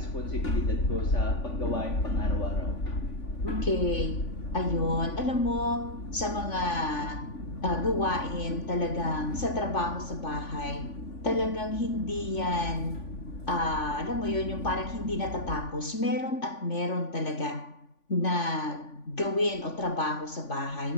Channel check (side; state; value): right; late; 3.5 ms